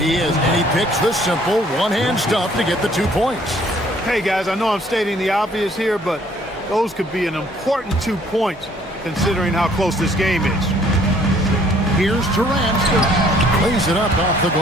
is, and he picks the simple one-hand stuff to get the 2 points. Hey, guys, I know I'm stating the obvious here, but those could be an important 2 points considering how close this game is. Here's Durant. Lays it up off the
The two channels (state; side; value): normal; both; correlation 0.61